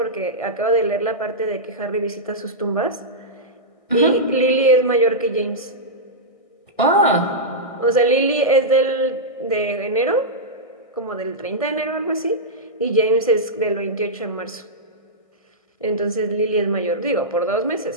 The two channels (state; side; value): late; right; 1.6 ms